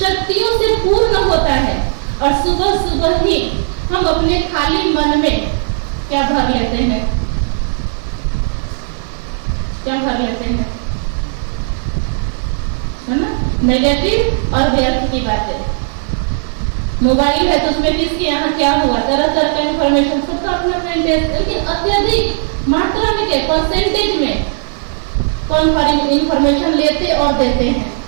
से पूर्ण होता है, और सुबह सुबह ही हम अपने खाली मन में क्या भर लेते हैं? क्या भर लेते हैं? है ना, नेगेटिव और व्यर्थ की बातें। मोबाइल है तो उसमें किसके यहाँ क्या हुआ, तरह तरह का इंफॉर्मेशन, सबका अपना अपना इंटरेस्ट, लेकिन अत्यधिक मात्रा में क्या, परसेंटेज में कौन इंफॉर्मेशन लेते और देते हैं।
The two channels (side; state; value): left; silent; digital silence